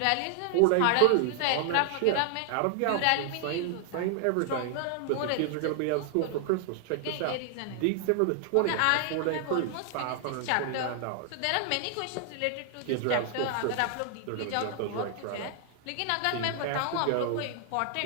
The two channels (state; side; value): different; both; correlation 0.00